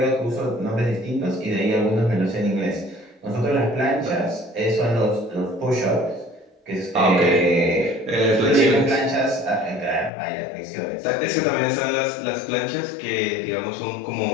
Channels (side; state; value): right; drops out; at 10.1 s